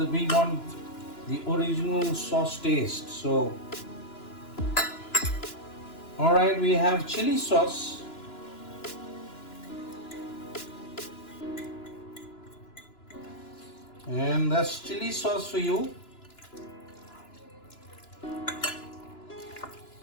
we want the original sauce taste. So alright, we have chili sauce. And that's chili sauce for you.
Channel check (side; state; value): right; late; 2.9 ms